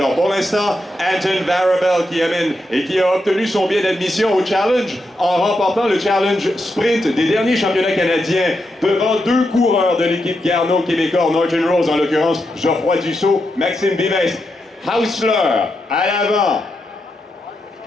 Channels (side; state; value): both; normal; correlation 0.85